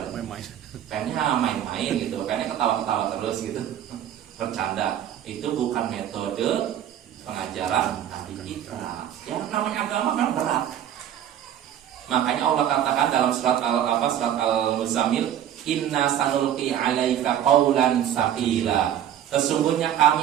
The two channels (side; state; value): left; quieter; 10.5 dB